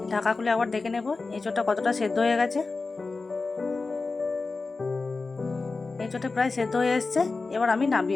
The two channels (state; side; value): quieter; right; 3.9 dB